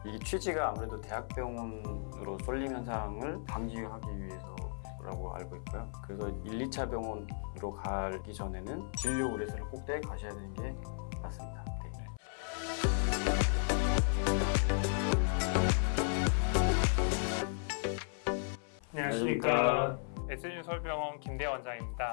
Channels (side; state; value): right; silent; 54 dB below the other